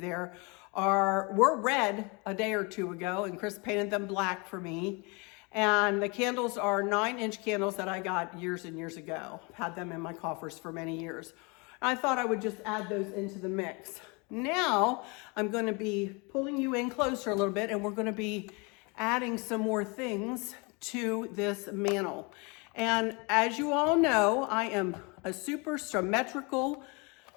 were red a day or two ago, and Chris painted them black for me. And the candles are 9-inch candles that I got years and years ago. I've had them in my coffers for many years. I thought I would just add those into the mix. Now I'm going to be pulling you in closer a little bit, and we're going to be adding some more things to this mantle. And as you all know, I am a super symmetrical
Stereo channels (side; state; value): right; quieter; 29.6 dB